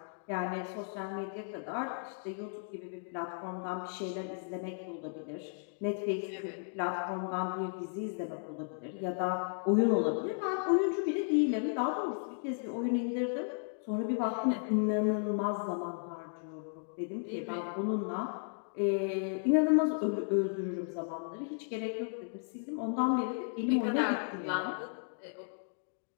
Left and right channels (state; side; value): silent; right; digital silence